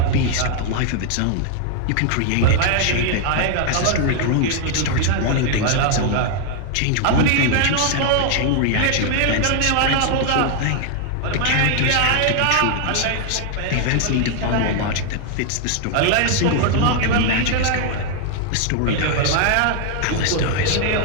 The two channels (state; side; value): different; both; correlation 0.00